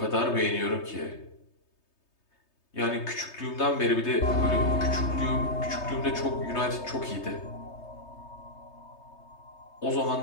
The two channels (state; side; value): late; right; 3.3 ms